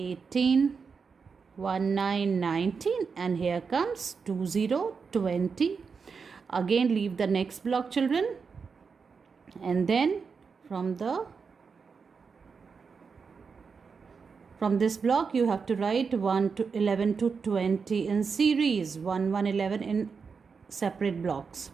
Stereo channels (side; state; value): left; quieter; 5.4 dB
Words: 1, 9, 19. And here comes 2, 0, 20. Again leave the next block, children. And then from this block, you have to write 1 to 11 to 20 in series. 1, 1, 11 in separate blocks.